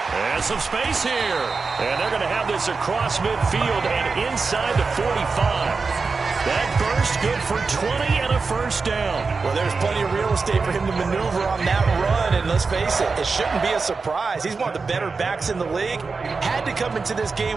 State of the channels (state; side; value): quieter; left; 4.5 dB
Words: And some space here. And they're going to have this across midfield and inside the 45. That burst good for 20 and a first down. Well, there's plenty of real estate for him to maneuver on that run. And let's face it, it shouldn't be a surprise. He's one of the better backs in the league. Had to come into this